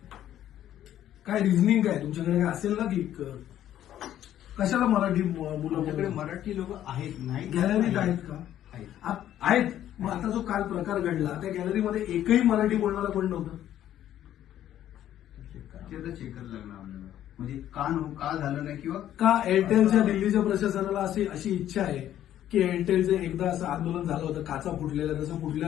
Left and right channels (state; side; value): quieter; right; 11.7 dB